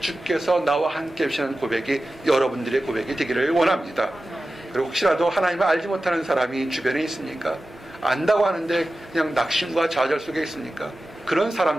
나와 함께 하시는 고백이 여러분들의 고백이 되기를 원합니다. 그리고 혹시라도 하나님을 알지 못하는 사람이 주변에 있습니까? 안다고 하는데 그냥 낙심과 좌절 속에 있습니까? 그런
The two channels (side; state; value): both; normal; correlation 0.94